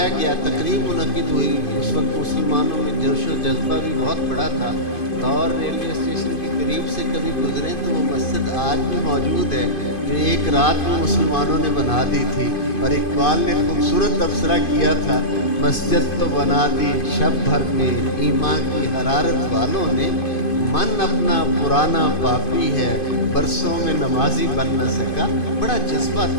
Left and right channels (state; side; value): late; right; 2.5 ms